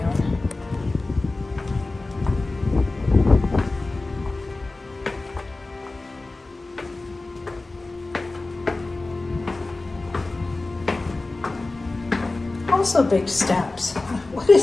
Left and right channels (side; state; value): right; quieter; 3.2 dB